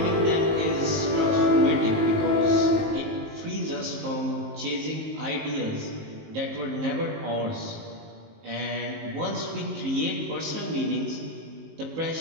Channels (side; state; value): left; late; 19 ms